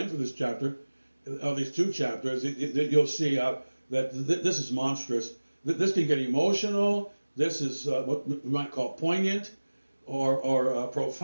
through this chapter, these two chapters, you'll see that this is monstrous. This can get emotional. This is what we might call poignant or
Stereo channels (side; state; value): both; inverted; correlation -1.00